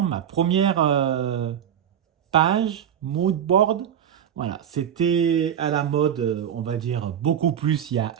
ma première page mood board. Voilà, c'était à la mode, on va dire, beaucoup plus il y a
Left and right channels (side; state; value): left; quieter; 9.2 dB